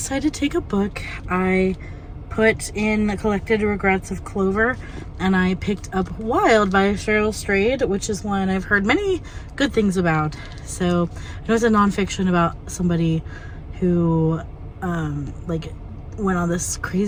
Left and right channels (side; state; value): both; identical; correlation 1.00